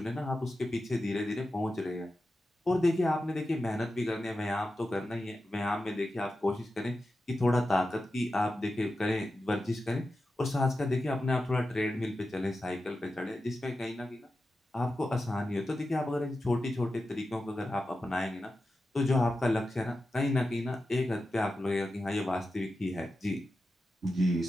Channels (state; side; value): normal; both; correlation 0.91